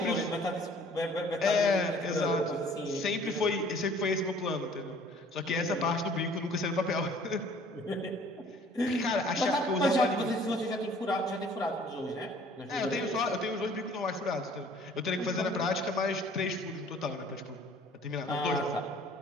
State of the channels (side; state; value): both; normal; correlation 0.54